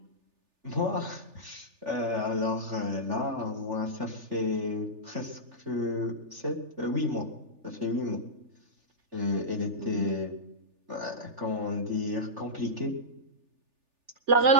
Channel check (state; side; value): late; left; 3.4 ms